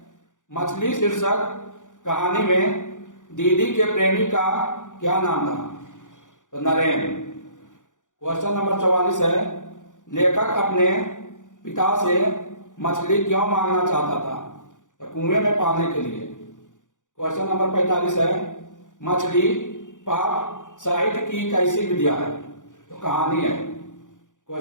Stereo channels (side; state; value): right; late; 0.87 ms